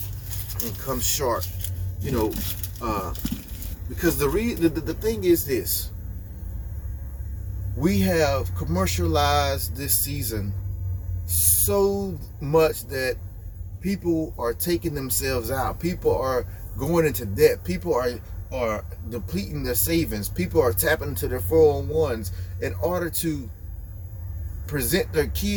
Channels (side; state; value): both; identical; correlation 1.00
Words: and come short. You know, because the thing is this. We have commercialized this season so much that people are taking themselves out. People are going into debt. People are depleting their savings. People are tapping into their 401s in order to present their